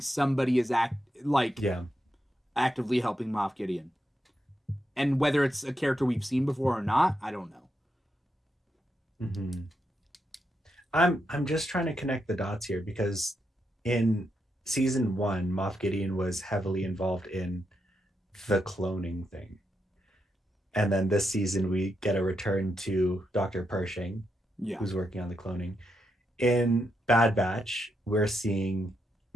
somebody is actively helping Moff Gideon. And whether it's a character we've seen before or not, I don't know. Mm-hmm. I'm just trying to connect the dots here, because in season 1, Moff Gideon was heavily involved in the cloning thing. And then this season we get a return to Dr. Pershing, who's working on the cloning. In Bad Batch, we're seeing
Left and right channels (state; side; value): normal; both; correlation 0.83